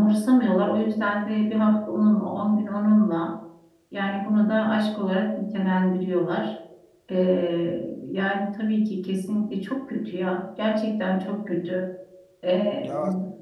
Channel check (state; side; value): identical; both; correlation 1.00